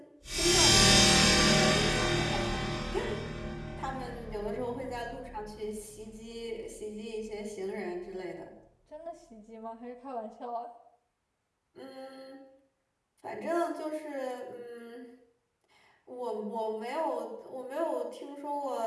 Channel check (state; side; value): identical; both; correlation 1.00